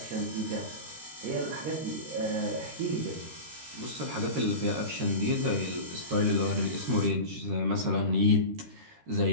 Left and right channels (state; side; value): late; left; 13 ms